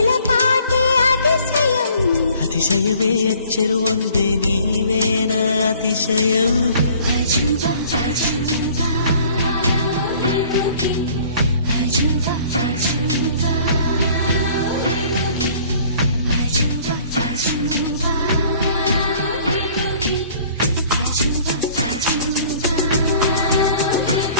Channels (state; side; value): inverted; both; correlation -0.54